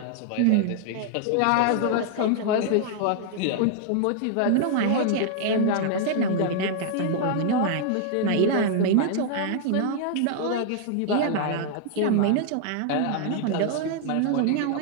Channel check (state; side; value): different; both; correlation 0.00